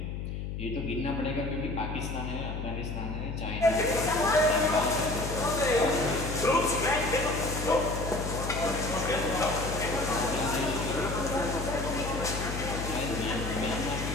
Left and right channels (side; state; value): left; noise; hum, 5 dB below the sound